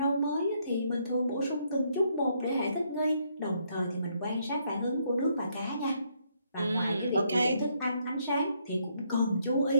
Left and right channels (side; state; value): both; inverted; correlation -0.72